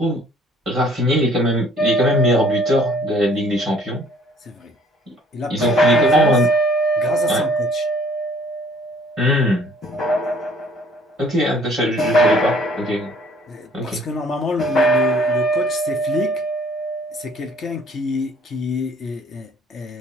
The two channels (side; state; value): both; normal; correlation 0.57